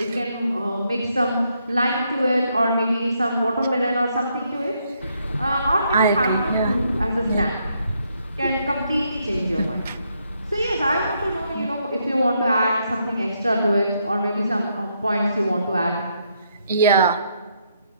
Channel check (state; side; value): inverted; both; correlation -0.75